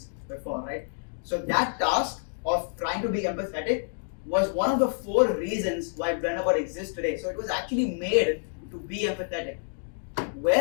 before, right? So that task of trying to be empathetic was one of the 4 reasons why Blenderbot exists today. So it was actually made to be empathetic,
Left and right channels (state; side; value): silent; right; digital silence